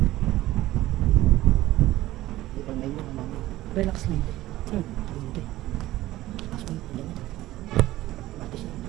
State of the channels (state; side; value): quieter; left; 16.1 dB